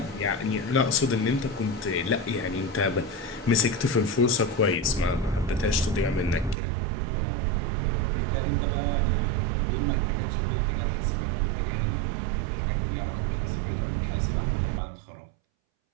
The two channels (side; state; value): left; drops out; at 6.6 s